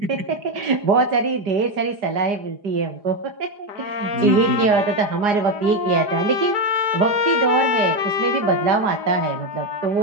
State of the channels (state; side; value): late; left; 4.9 ms